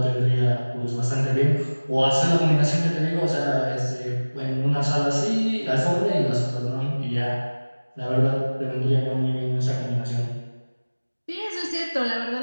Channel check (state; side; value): inverted; both; correlation -1.00